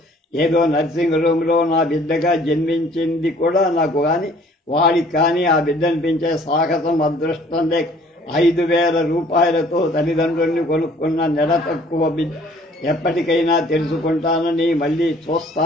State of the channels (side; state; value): both; normal; correlation 0.56